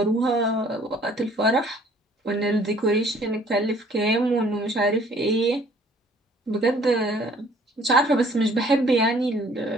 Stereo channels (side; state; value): both; normal; correlation 0.57